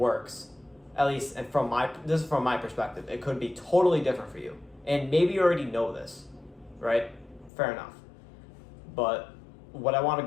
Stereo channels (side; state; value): right; drops out; at 7.5 s